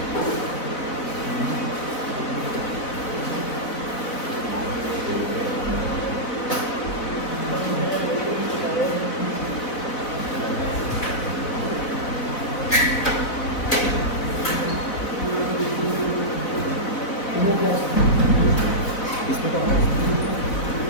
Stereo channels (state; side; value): late; right; 4.0 ms